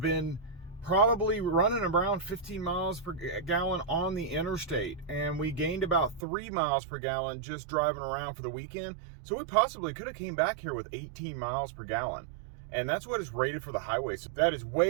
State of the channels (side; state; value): left; drops out; at 6.2 s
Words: been probably running around 15 miles per gallon on the interstate, and we gained about 3 miles per gallon just driving around for the weekend. So we possibly could have came back here with 18 miles per gallon, and that's what is rated for the highway. So that is